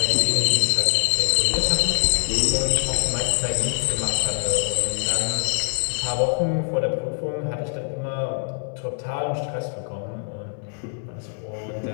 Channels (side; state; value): right; silent; 62 dB below the other